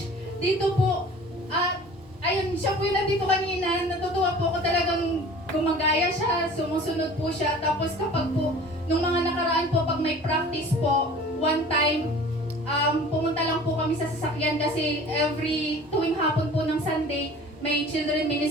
dito po, ayun, siya po yung nandito kanina, natutuwa po ako talagang gumagaya siya, sumusunod po siya. Tapos kapag po, nung mga nakaraan po, pag may practice po, one time, pumunta lang po kami sa sasakyan kasi tuwing hapon po ng Sunday, may children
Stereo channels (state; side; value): normal; both; correlation 0.44